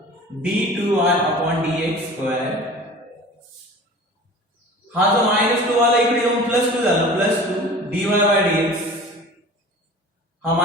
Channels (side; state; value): both; normal; correlation 0.40